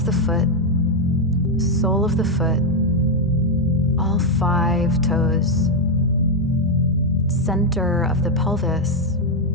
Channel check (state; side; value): normal; both; correlation 0.02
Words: the foot, sole of the foot, all 5 toes. Center of the pelvis.